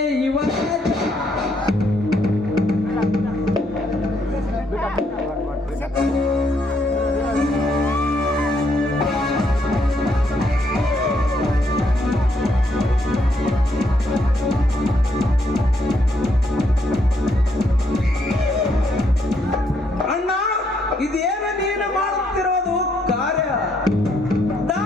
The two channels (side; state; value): both; normal; correlation 0.73